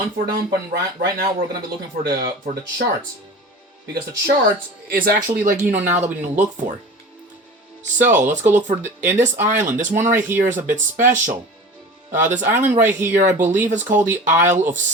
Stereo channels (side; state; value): both; normal; correlation 0.36